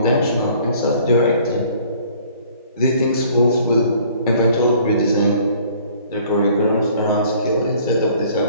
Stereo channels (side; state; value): both; inverted; correlation -0.55